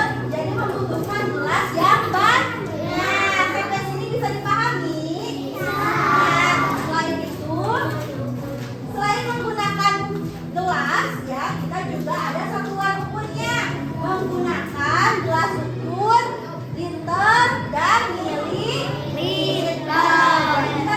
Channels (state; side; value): identical; both; correlation 1.00